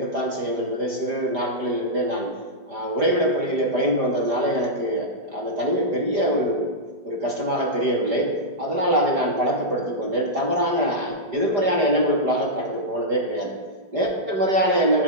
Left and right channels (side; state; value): left; late; 5.0 ms